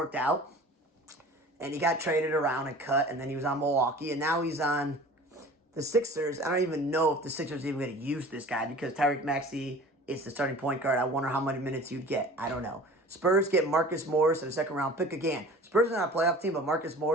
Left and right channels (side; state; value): both; normal; correlation 0.43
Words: out. And he got traded around and cut, and then he was on Milwaukee, and now he's on the Sixers. I don't even know if the Sixers are even going to use this guy because Tyreke Maxey is the starting point guard. I wonder how many minutes you'd get. I don't know. Spurs get Marcus Morris and a second-round pick again. Spurs are not a playoff team, but Marcus